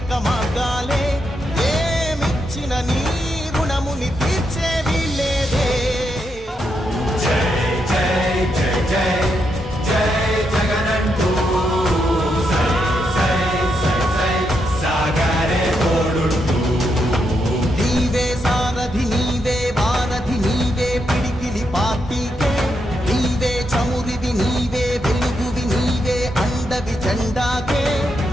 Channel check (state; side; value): normal; both; correlation 0.81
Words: మార్గాలే ఏమిచ్చిన నీ రుణముని తీర్చేవి లేదే జై జై జై జై జై జగనంటూ నీవే సారథి నీవే వారధి నీవే పిడికిలి పార్టీకే నీవే చమురివి నీవే వెలుగువి నీవే అండవి జెండాకే